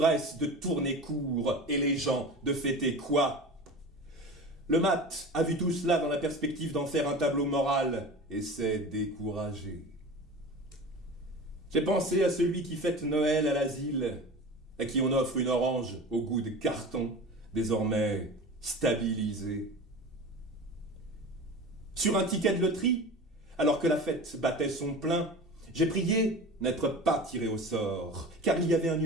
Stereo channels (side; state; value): both; normal; correlation 0.34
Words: de tourner court, et les gens de fêter quoi? Le mat a vu tout cela dans la perspective d'en faire un tableau moral, et s'est découragé. J'ai pensé à celui qui fête Noël à l'asile, à qui on offre une orange au goût de carton, désormais stabilisé. Sur un ticket de loterie, alors que la fête battait son plein, j'ai prié n'être pas tiré au sort, car il y avait un